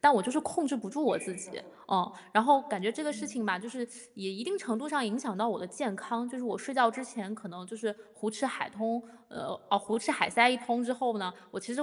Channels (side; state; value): both; identical; correlation 1.00